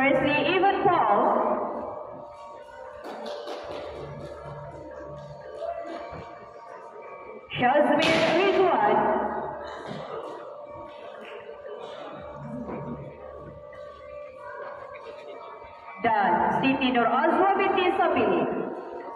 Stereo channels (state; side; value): identical; both; correlation 1.00